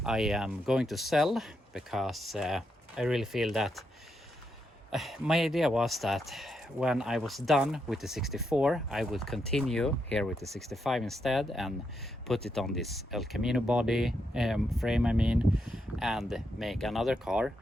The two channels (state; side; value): normal; both; correlation 0.82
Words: I am going to sell because I really feel that my idea was that when I was done with the 64, I would continue here with the 65 instead and put it on this El Camino body frame, and make another car.